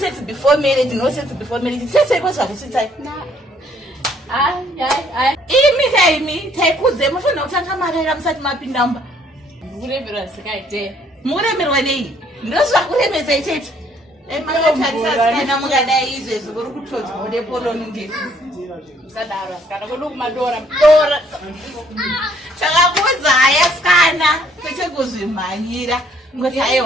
before marriage, no sex before marriage. Sese kwazva kuchitai. Imi taikudze mufanira kutanga marera musati mapindamba. Muremerwa sikaite. Muremerwa nei? Ndozvakuremesa ichecho. Makatarisa mungadai izvezvi kuri kutodzwa nepoloni ndisi. Musadaro asikana kwedu kumadora. Takakudza yasikana kwete kuzvimhanyira. Ngoti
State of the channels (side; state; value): both; normal; correlation 0.64